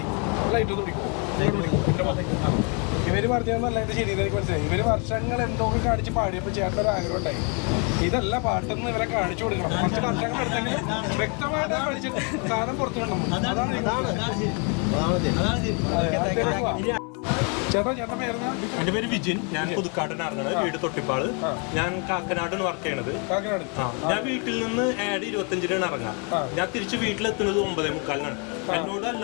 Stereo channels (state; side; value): quieter; right; 36.4 dB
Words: ലൈറ്റ് ഒന്ന് പിടിക്കും. ഇവര് പറഞ്ഞതല്ല എന്റെ ശരിയെന്ന് എനിക്ക് മനസ്സിലായി. ഇവര് വർഷങ്ങൾ എന്തൊക്കെ കാണിച്ച് പാടിയപ്പോൾ ചേട്ടൻ ഒരു ആഗ്രഹം ഉണ്ടായി, ഇതല്ല പാട്ടെന്ന് ഇവരെ കാണിച്ചു കൊടുക്കണം. കുറച്ച് വർഷങ്ങൾ എടുത്തെങ്കിലും വ്യക്തമായിട്ട് കാണിച്ചിട്ട് സാധനം പുറത്തു വിടണം. അതാണ് ചേട്ടാ ചേട്ടൻ പേരുന്ന? എന്റെ പേര് വിജിൻ. ഞാൻ പുതുക്കാടനാണ്, വീട് തൊട്ടിപ്പാള്. ഞാൻ കാക്കനാടാണ് വർക്ക് ചെയ്യണത്. ഞാൻ വീട്ടിൽ നിന്ന് 25-ന് ഇറങ്ങാം. ഞാൻ തിരിച്ച് വീട്ടിലെത്തുന്നത് 9:45-നാണ്. എന്നോട്